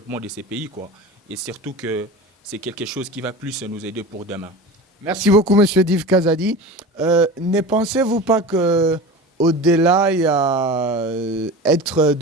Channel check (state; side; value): normal; both; correlation 0.32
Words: de ces pays quoi. Et surtout que c'est quelque chose qui va plus nous aider pour demain. Merci beaucoup, Monsieur Div Kazadi. Ne pensez-vous pas que au-delà, il y a être